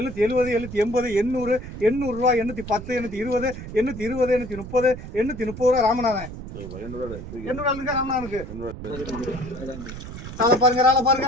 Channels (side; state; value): right; noise; rumble, 11 dB below the sound